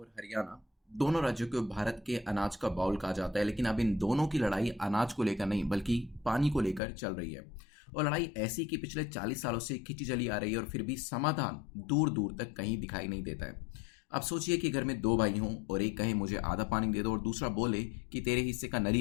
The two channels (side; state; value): right; drops out; at 6.8 s